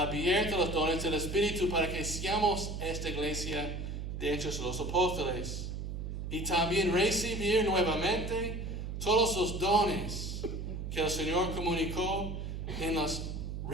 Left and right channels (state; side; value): noise; right; hum, 5 dB below the sound